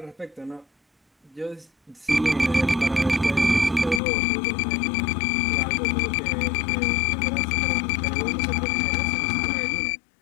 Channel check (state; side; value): drops out; right; at 4.0 s